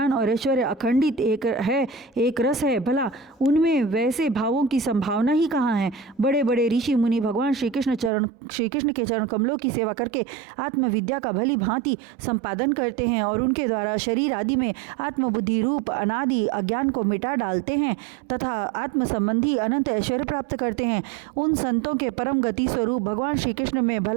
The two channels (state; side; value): drops out; left; at 8.1 s